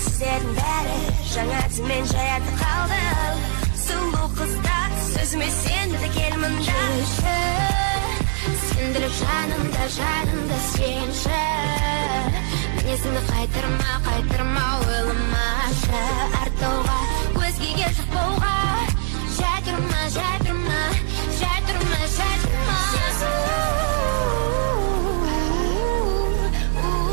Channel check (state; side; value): silent; left; digital silence